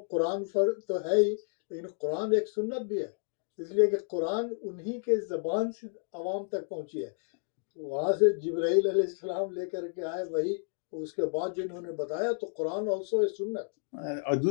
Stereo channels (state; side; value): silent; right; digital silence